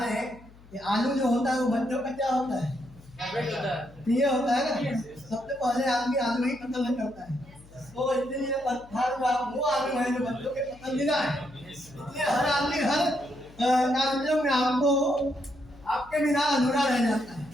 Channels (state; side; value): noise; left; hum, 23 dB below the sound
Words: हैं कि आलू जो होता है वो बच्चों का क्या होता है, प्रिय होता है ना। सबसे पहले आदमी आलू ही कत्ल नहीं करता है। तो इसलिए पत्थर का वो आलू है जो बच्चों के पसंदीदा है। इसलिए हर आदमी हर कार्यक्रम में आपको आपके बिना अधूरा रह जाता है।